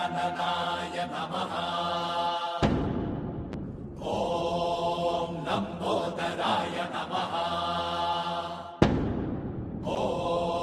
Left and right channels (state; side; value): identical; both; correlation 1.00